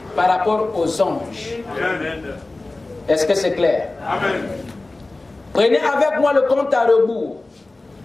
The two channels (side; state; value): right; quieter; 3.1 dB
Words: par rapport aux anges. Amen. Est-ce que c'est clair? Amen. Prenez avec moi le compte à rebours.